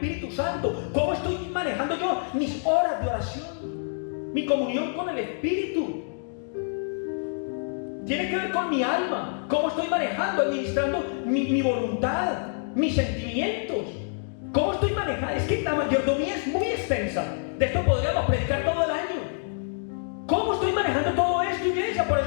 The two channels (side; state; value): right; silent; digital silence